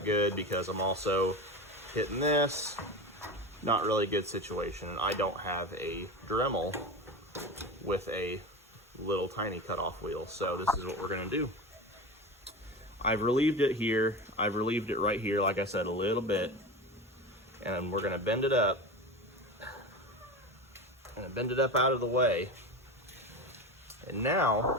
good because I'm also hitting this. Not really good situation. I don't have a Dremel with a little tiny cutoff wheel, so this is what we're going to do. I've relieved it here. I've relieved it right here, like I said, a little bit, and we're going to bend it up. Bend it up out of the way. And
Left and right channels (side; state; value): both; normal; correlation 0.26